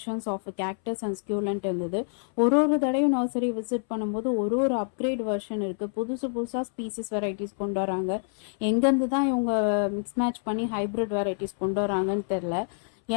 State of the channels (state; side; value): silent; right; 60 dB below the other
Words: ஆஃப் கேக்டஸ் அண்ட் ஸ்கியூலண்ட் இருந்தது. ஒரு தடவையும் நர்சரி விசிட் பண்ணும்போது ஒரு அப்கிரேட் வெர்ஷன் இருக்குது. புதுசாக ஸ்பீசிஸ் வெரைட்டிஸ் கொண்டு வராங்க. எங்கேருந்து தான் இவங்க மிக்ஸ் மேட்ச் பண்ணி ஹைப்ரிட் வெரைட்டிஸ் கொண்டு வராங்கன்னு தெரில.